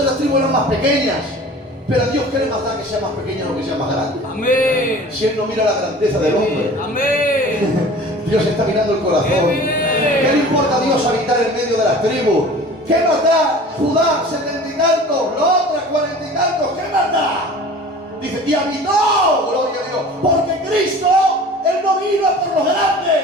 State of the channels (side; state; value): both; normal; correlation 0.42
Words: las tribus eran más pequeñas. Pero a Dios, ¿qué le más da que sea más pequeña o que sea más grande? Amén. Si Él no mira la grandeza del hombre, Amén. Dios está mirando el corazón. ¡Qué bien! ¿Qué le importa a Dios habitar en medio de las tribus? ¿Qué más da Judá 70 y tantos, la otra 40 y tantos? ¿Qué más da? Dice, y habitó, gloria a Dios, porque Cristo, Él no vino a por los